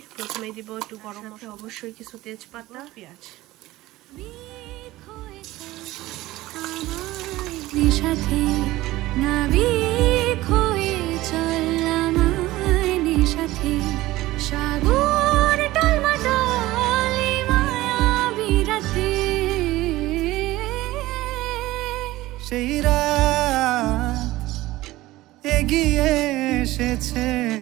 প্রথমেই দিব একটু গরম মশলা, অবশ্যই কিছু তেজপাতা, পেঁয়াজ। সাথে নাবিক হয়ে চললাম সাথে সাগর টলমটলে মায়াবী রাতে, সেই রাত এগিয়ে এসেছে।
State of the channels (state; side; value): quieter; left; 17.5 dB